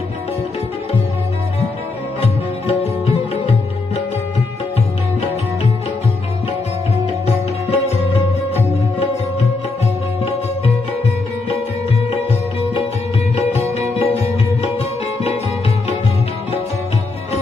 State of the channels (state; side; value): quieter; right; 3.5 dB